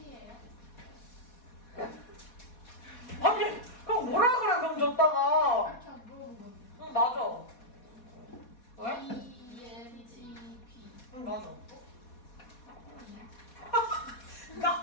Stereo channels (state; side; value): late; right; 4.2 ms